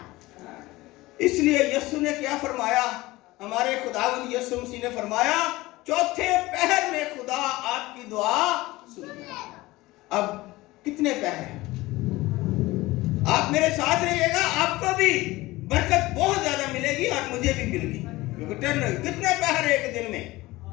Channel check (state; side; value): quieter; right; 19.4 dB